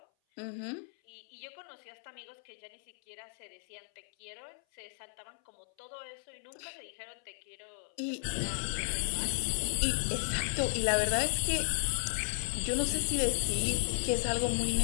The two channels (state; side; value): silent; right; 55 dB below the other